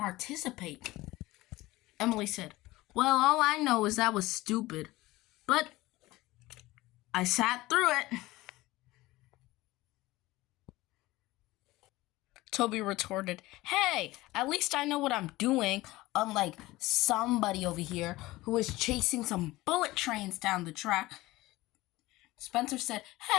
Emily said, Well, all I know is that was stupid. But I sat through it. Toby retorted, Hey, at least I know what I'm doing, unlike somebody over here who is chasing some bullet trains down the track. Spencer said,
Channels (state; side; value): quieter; right; 18.9 dB